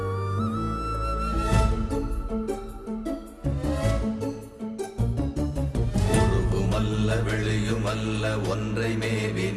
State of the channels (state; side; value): identical; both; correlation 1.00